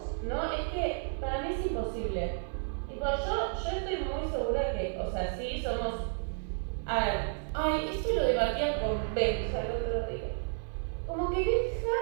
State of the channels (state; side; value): silent; left; 56 dB below the other